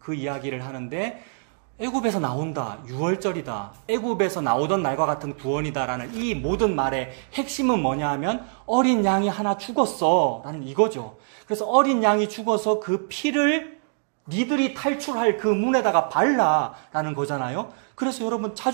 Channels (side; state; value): left; silent; 62 dB below the other